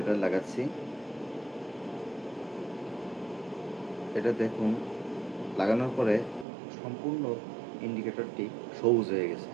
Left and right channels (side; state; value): left; drops out; at 6.5 s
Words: লাগাচ্ছি। এটা দেখুন, লাগানোর পরে সম্পূর্ণ ইন্ডিকেটরটি সবুজ হয়ে গেছে।